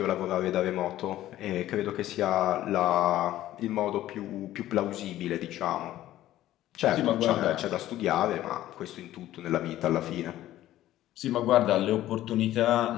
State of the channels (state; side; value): quieter; right; 14.0 dB